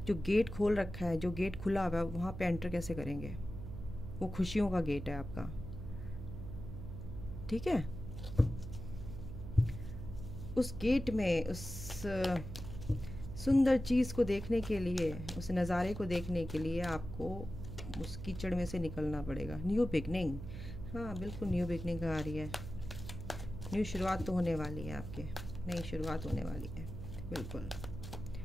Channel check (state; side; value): noise; right; hum, 9 dB below the sound